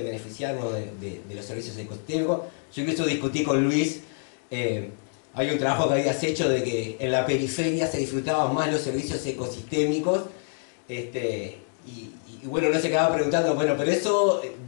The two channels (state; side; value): silent; right; 60 dB below the other